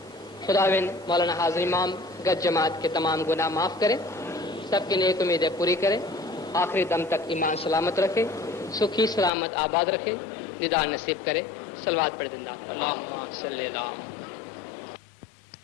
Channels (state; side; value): drops out; right; at 9.3 s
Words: خداوند مولانا حاضر امام گج جماعت کے تمام گناہ معاف کرے، سب کی نیک امیدیں پوری کرے، آخری دم تک ایمان سلامت رکھے، سکھی سلامت آباد رکھے، دیدار نصیب کرے۔ صلوات پڑھ زندہ اللہم صلی اللہ۔